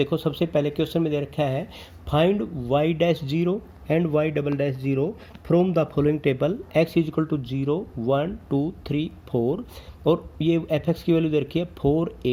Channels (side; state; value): both; identical; correlation 1.00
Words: सबसे पहले क्वेश्चन में दे रखा है find y'0 and y'0 from the following table, x = 0 1 2 3 4, और ये f(x) की वैल्यू दे रखी है 4